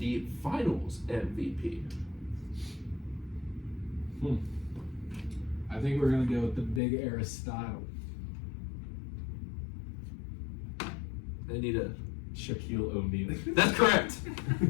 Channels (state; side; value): drops out; right; at 6.8 s